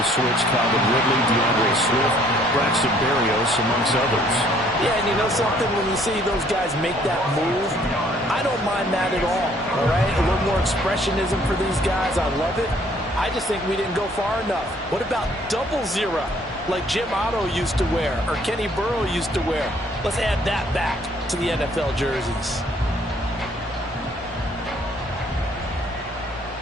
switch, Calvin Ridley, DeAndre Swift, Braxton Berrios, amongst others. Yeah, and you know something, when you see those guys make that move, I don't mind that at all right? A little more expressionism for these guys, I love it. I just think we didn't go far enough. What about 000? Like Jim Otto used to wear, or Kenny Burrow used to wear. Let's add that back to the NFL jerseys.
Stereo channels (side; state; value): both; normal; correlation 0.61